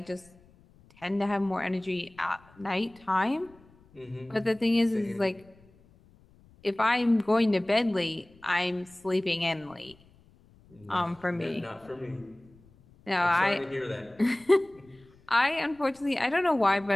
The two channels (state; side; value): noise; left; rumble, 28 dB below the sound